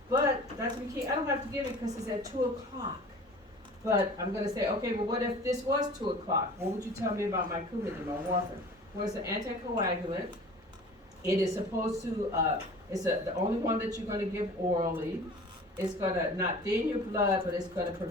but Dr. McKee, I don't have to give it because it's at 2 o'clock. But I'm going to say, okay, well, what if this was 2 o'clock? What would you tell me about my Coumadin, my warfarin? Well, it's an anticoagulant. It is supposed to, the only one that you're going to give orally. It's going to not thin your blood, but it's going to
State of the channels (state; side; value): normal; both; correlation 0.43